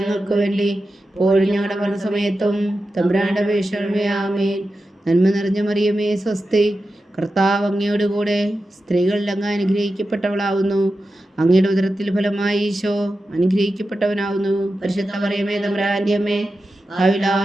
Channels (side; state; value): both; normal; correlation 0.91